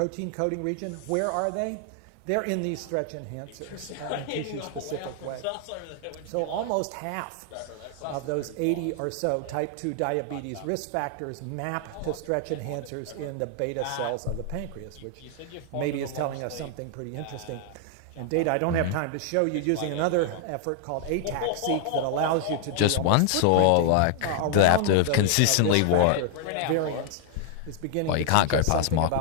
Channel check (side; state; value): both; different; correlation 0.00